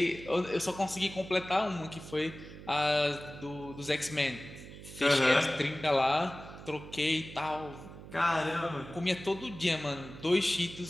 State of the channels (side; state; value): right; noise; hum, 14 dB below the sound